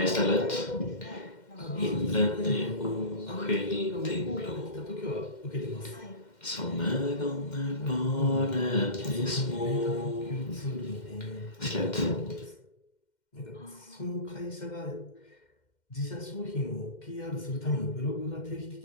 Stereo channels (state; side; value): late; right; 2.1 ms